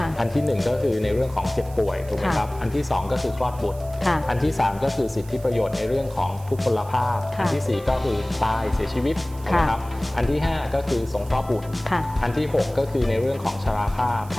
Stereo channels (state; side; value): noise; right; hiss, 22 dB below the sound